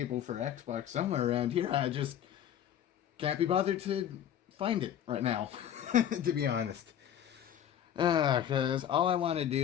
for Xbox somewhere around here. I just can't be bothered to find it right now, to be honest. Because all I want to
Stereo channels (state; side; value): quieter; right; 10.1 dB